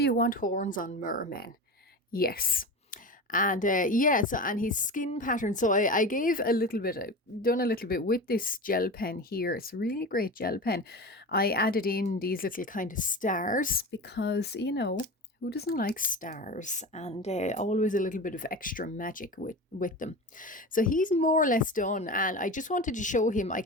want horns on mermen? Yes. And yeah, so, and his skin pattern. So I gave a little bit, I've done a little bit with this gel pen here. It's a really great gel pen. I added in these little kind of stars because, who doesn't like stars? And always a little bit of extra magic with them. So he's more or less done. And I just wanted to show him, I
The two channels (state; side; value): normal; both; correlation 0.28